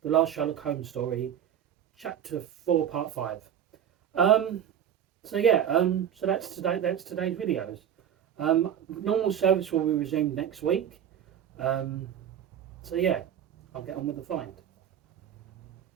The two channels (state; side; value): quieter; left; 9.4 dB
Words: the last Sherlock Holmes story, Chapter 4, Part 5. Um, so that's today. That's today's videos. Normal service will be resumed next week. Um, so yeah, I'll get on with the find.